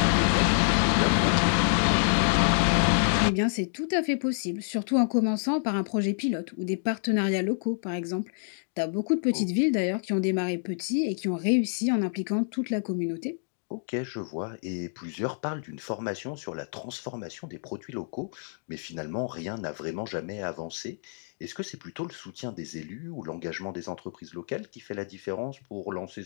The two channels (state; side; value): silent; right; digital silence